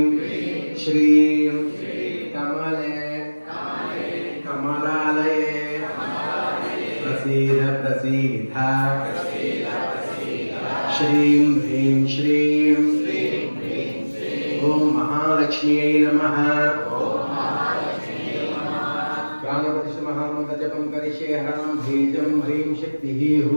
శ్రీం కమలే కమలాలయే ప్రసీద ప్రసీద శ్రీం హ్రీం శ్రీం ఓం మహాలక్ష్మ్యై నమః ప్రాణప్రతిష్ఠ మహామంత్ర జపం కరిష్యే హరం బీజం హ్రీం శక్తిః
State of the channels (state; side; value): inverted; both; correlation -1.00